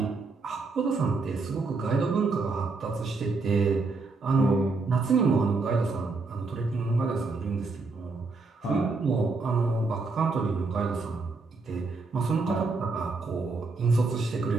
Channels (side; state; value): left; quieter; 3.8 dB